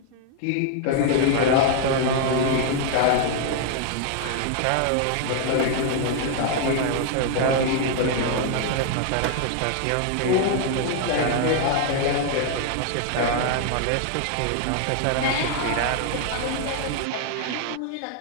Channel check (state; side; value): different; both; correlation 0.00